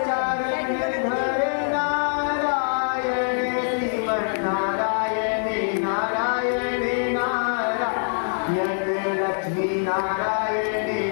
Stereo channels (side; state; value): right; silent; digital silence